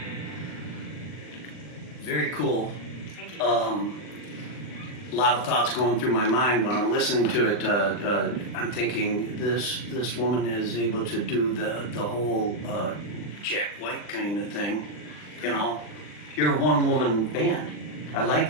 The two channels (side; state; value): right; late; 39 ms